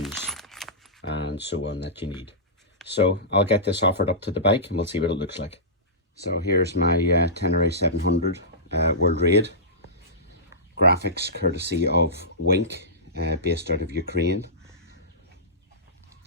and so on that you need. So I'll get this offered up to the bike and we'll see what it looks like. So here's my Tenere 700 World Raid. Graphics courtesy of Wink, based out of Ukraine.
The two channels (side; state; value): both; normal; correlation -0.19